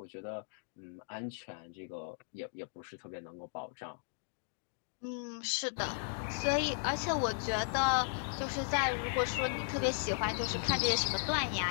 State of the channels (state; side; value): silent; right; digital silence